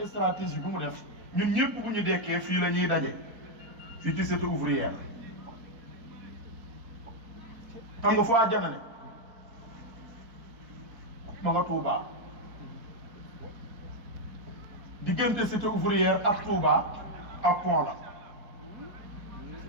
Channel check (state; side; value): late; left; 4.3 ms